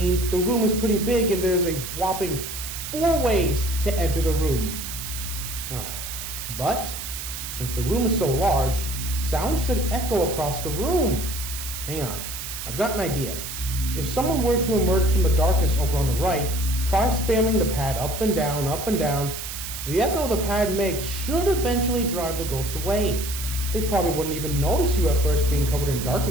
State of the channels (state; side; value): noise; right; hiss, 7 dB below the sound